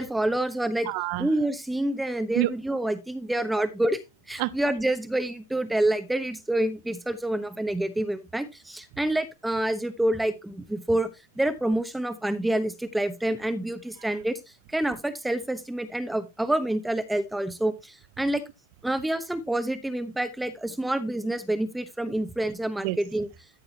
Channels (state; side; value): normal; both; correlation 0.90